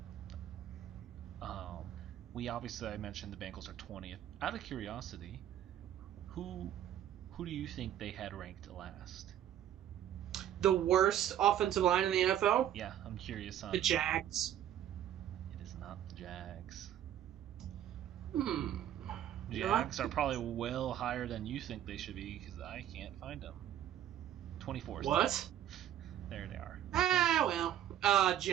I mentioned the Bengals are 20th. Out of curiosity, who do you think they had ranked last? The worst offensive line in the NFL? Yeah, I'm curious on the Jags. It is not the Jags. Hmm. Jags are probably well higher than you think they should be because I can't find them. 24. What? There they are.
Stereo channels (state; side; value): quieter; left; 11.2 dB